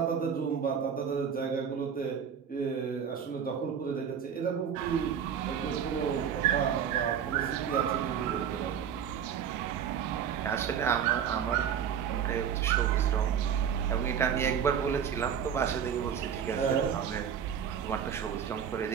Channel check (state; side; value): quieter; left; 8.0 dB